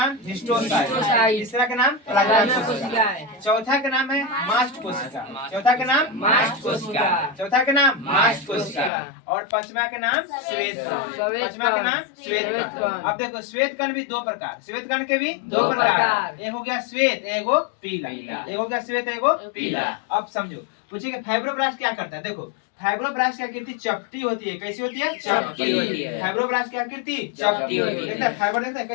हिस्टोसाइट, तीसरा का नाम प्लाज्मा कोशिकाएं। चौथा का नाम है मास्ट कोशिका, चौथा का नाम मास्ट कोशिका, चौथा का नाम मास्ट कोशिका। और पांचवा का नाम श्वेत कण, पांचवा का नाम श्वेत कण। अब देखो श्वेत कण भी 2 प्रकार, श्वेत कण के भी 2 प्रकार, एक हो गया श्वेत, एक हो पीला, एक हो गया श्वेत, एक हो पीला। अब समझो, पूछे कि फाइब्रोब्लास्ट क्या करता है। देखो फाइब्रोब्लास्ट की आकृति चपटी होती है, कैसी होती है, चपटी होती है। फाइब्रोब्लास्ट की आकृति चपटी होती है। फाइबर देखता है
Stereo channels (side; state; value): right; drops out; at 8.9 s